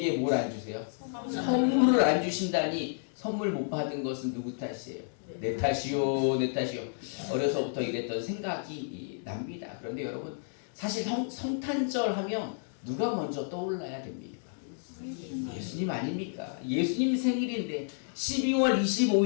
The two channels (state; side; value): silent; right; digital silence